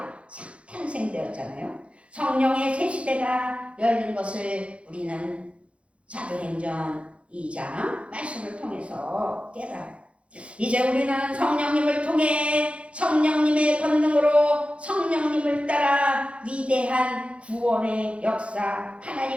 탄생되었잖아요. 성령의 새 시대가 열린 것을 우리는 사도행전 2장 말씀을 통해서 깨달아요. 이제 우리는 성령님을 통해 성령님의 권능으로 성령님을 따라 위대한 구원의 역사,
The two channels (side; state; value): left; late; 0.061 ms